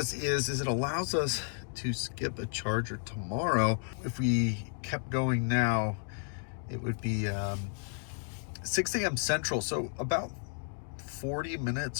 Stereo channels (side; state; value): right; silent; 56 dB below the other